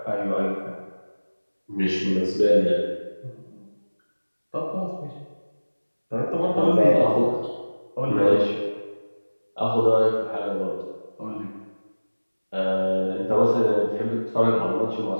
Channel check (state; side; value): inverted; both; correlation -1.00